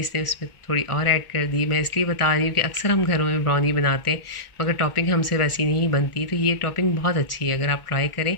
उसमें थोड़ी और ऐड कर दी। मैं इसलिए बता रही हूँ कि अक्सर हम घरों में ब्राउनी बनाते हैं मगर टॉपिंग हमसे वैसी नहीं बनती, तो ये टॉपिंग बहुत अच्छी है, अगर आप ट्राई करें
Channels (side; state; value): right; late; 1.4 ms